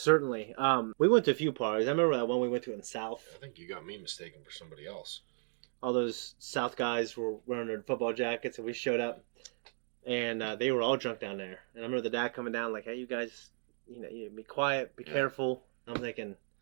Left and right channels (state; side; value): silent; left; 55 dB below the other